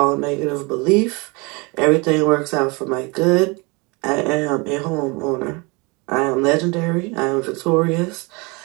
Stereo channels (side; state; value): left; quieter; 28.0 dB